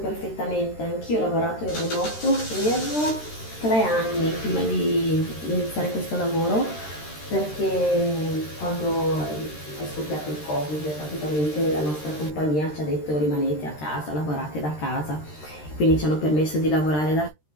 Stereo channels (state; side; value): late; right; 13 ms